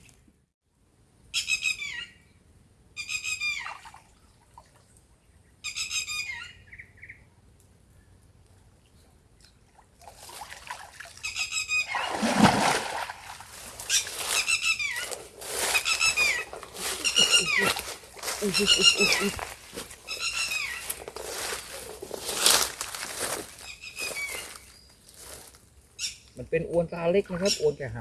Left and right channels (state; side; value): identical; both; correlation 1.00